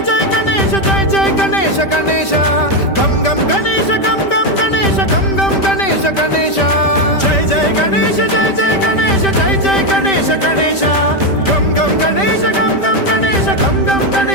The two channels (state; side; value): late; right; 5.1 ms